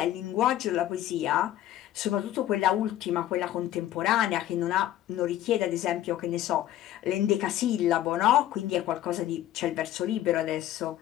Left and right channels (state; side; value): quieter; right; 13.0 dB